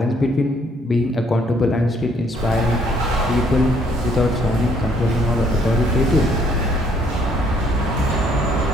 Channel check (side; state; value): both; normal; correlation 0.65